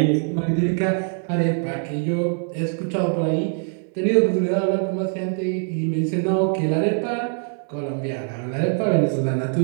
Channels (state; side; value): silent; left; 57 dB below the other